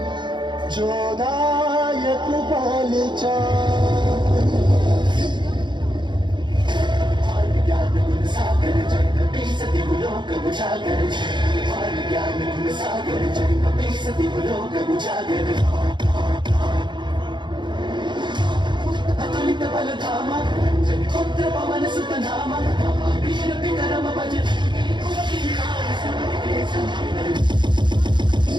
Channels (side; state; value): left; late; 0.22 ms